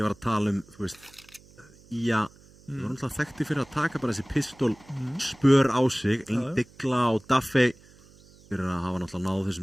var að tala þú veist, ég var náttúrulega þekkti fyrir að taka bara þessi pistól spör á sig, Digla og Duffy fyrir að hafa náttúrulega náð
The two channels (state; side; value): noise; right; hum, 25 dB below the sound